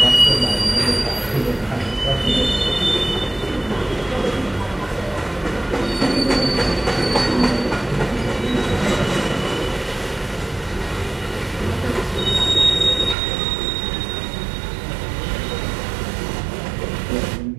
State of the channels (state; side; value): drops out; left; at 13.2 s